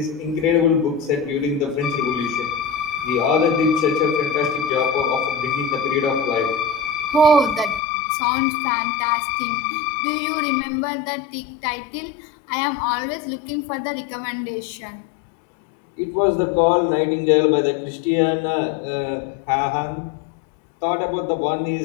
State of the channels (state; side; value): drops out; right; at 7.8 s